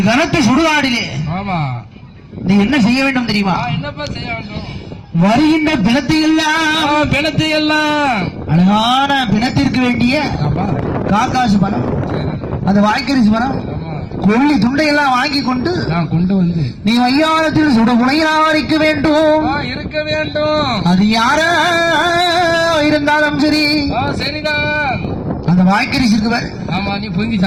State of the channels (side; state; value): both; identical; correlation 1.00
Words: கனத்த சுடுகாடிலே நீ என்ன செய்ய வேண்டும் தெரியுமா? வருகின்ற பிணத்தை எல்லாம் அழகான பிணத்திற்கு வேண்டிய காக்காசு பணம், அந்த வாய்க்கரிசி பணம், கொள்ளி துண்டையெல்லாம் வாங்கி கொண்டு வந்து நீ மையானத்தில் சுட முனையாரிக்க வேண்டும். அது யாரா இருந்தாலும் சரி, சரிதான். அந்த வாய்க்கரிசி இருக்கு, நீ பொங்கி